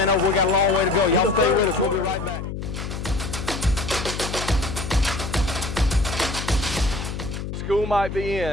over. We got a long way to go. Y'all stay with us. We'll be right back. School might be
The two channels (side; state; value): left; noise; hum, 6 dB below the sound